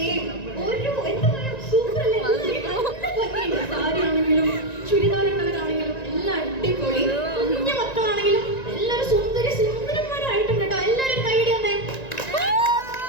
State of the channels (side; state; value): right; late; 1.9 ms